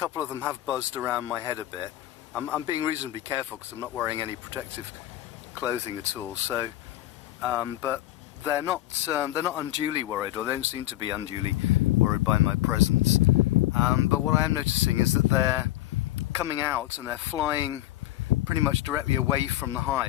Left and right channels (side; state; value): right; quieter; 15.1 dB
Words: of them have buzzed around my head a bit. I'm being reasonably careful because I'm not wearing any protective clothing at all. So, but they're not unduly worried, or they don't seem to be unduly worried by my presence. But what I am noticing is that they're coming out and they're flying pretty much directly away from the